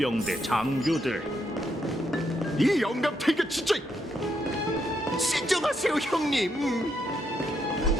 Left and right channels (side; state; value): both; normal; correlation 0.78